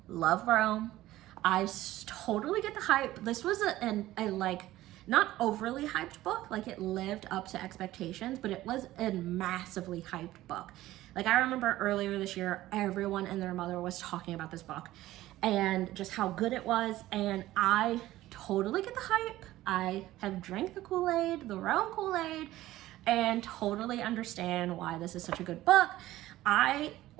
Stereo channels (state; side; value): quieter; left; 15.7 dB